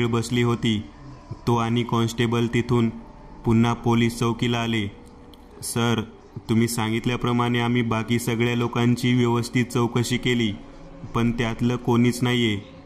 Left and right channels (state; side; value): identical; both; correlation 1.00